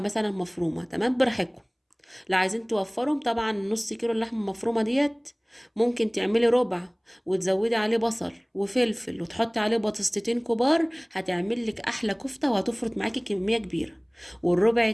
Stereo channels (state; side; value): identical; both; correlation 1.00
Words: مفرومه. تمام. براحتكم. لو عايزين توفرهم طبعا نص كيلو اللحمه المفرومه ديت ممكن تعملي ربع، وتزودي عليه بصل وفلفل وتحطي عليه بطاطستين كبار، هتعمل لك احلى كفته وهتفرط معاكي كميه كبيره. والربع